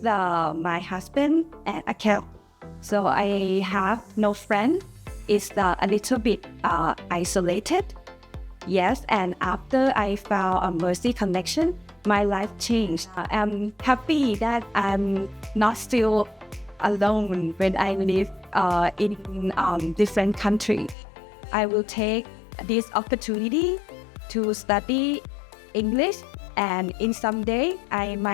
my husband and a cat. So I have no friend. It's a little bit isolated. Yes, and after I found a Mercy Connection, my life changed. I'm happy that I'm not still alone when I live in different countries. I will take this opportunity to study English, and in some day I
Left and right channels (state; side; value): drops out; right; at 21.0 s